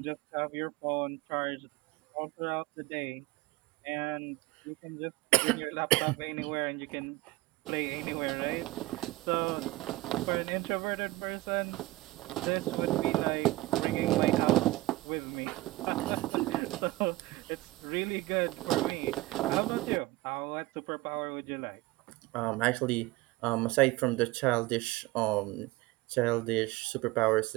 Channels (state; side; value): quieter; left; 19.6 dB